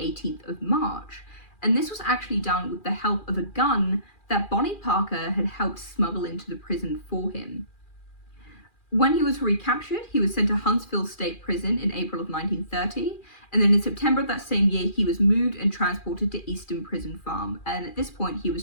of March. And this was actually done with the help of a gun that Bonnie Parker had helped smuggle into the prison for him. When he was recaptured, he was sent to Huntsville State Prison in April of 1930, and then in September of that same year, he was moved and transported to Easton Prison Farm, and at this point, he was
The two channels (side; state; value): right; late; 2.4 ms